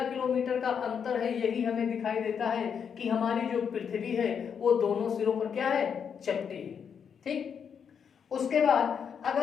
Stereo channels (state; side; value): quieter; right; 7.2 dB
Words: किलोमीटर का अंतर है यही हमें दिखाई देता है कि हमारी जो पृथ्वी है वो दोनों सिरों पर क्या है, चपटी है। ठीक, उसके बाद